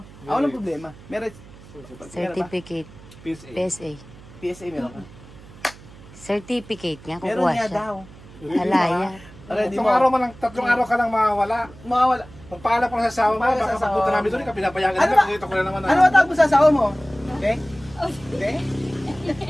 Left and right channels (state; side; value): noise; right; hum, 20 dB below the sound